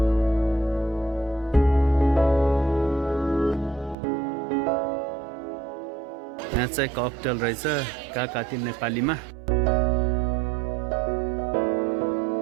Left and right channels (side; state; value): left; drops out; at 4.0 s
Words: यहाँ चाहिँ ककटेल रहेछ काकाती नेपालीमा